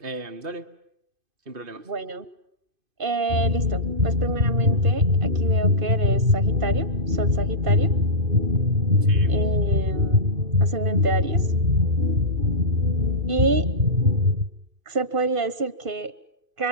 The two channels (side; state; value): left; late; 2.5 ms